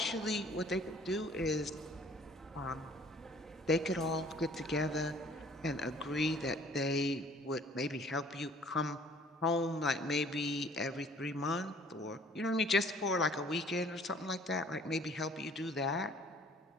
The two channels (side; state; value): both; normal; correlation 0.55